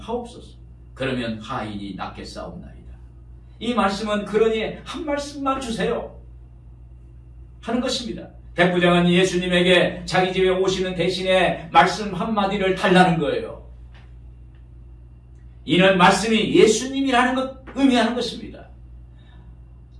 그러면 하인이 낫겠사옵나이다. 이 말씀은 그러니 한 말씀만 주세요 하는 것입니다. 백부장은 예수님에게 자기 집에 오시는 대신에 말씀 한마디를 달라는 거예요. 이는 말씀이 예수님이라는 것 의미하는 것입니다.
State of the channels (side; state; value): both; identical; correlation 1.00